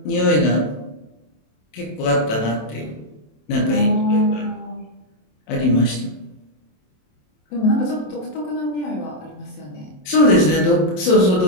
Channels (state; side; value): late; right; 27 ms